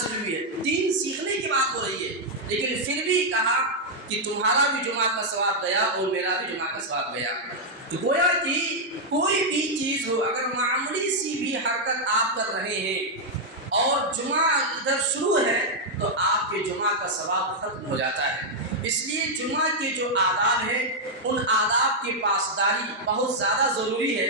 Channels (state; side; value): normal; both; correlation -0.02